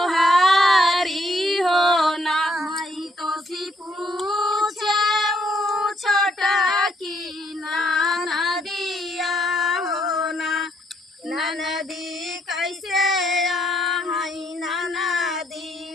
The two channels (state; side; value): normal; both; correlation 0.71